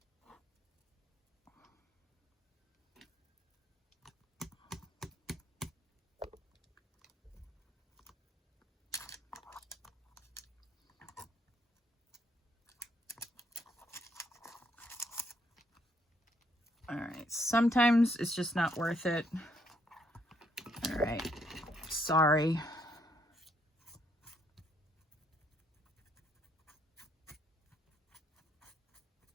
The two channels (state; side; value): normal; both; correlation 0.72